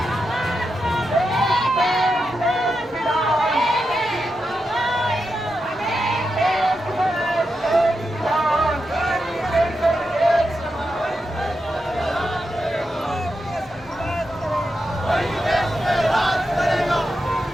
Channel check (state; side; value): normal; both; correlation 0.87